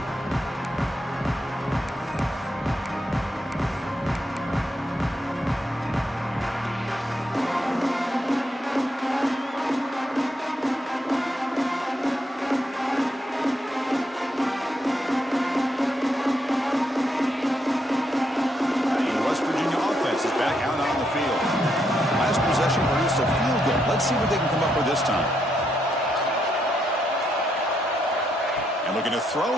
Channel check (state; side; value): normal; both; correlation 0.78